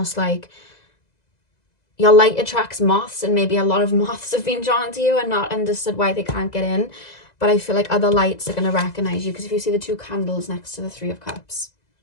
like your light attracts moths, and maybe a lot of moths have been drawn to you and not understood why they can't get in. But I feel like other lights are going to recognize you, because if you see the two candles next to the Three of Cups.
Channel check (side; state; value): right; late; 2.0 ms